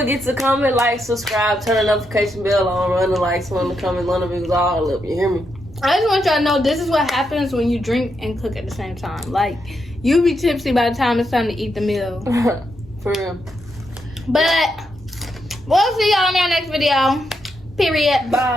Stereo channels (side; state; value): both; normal; correlation 0.82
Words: to comment, like, subscribe, turn the notification bell on, run the likes, run the comments, run the views, all up. You hear me? I just want y'all to know this is what happens when you drink and cook at the same time. Like, you be tipsy by the time it's time to eat the meal. For real. But we'll see y'all in our next video. Period.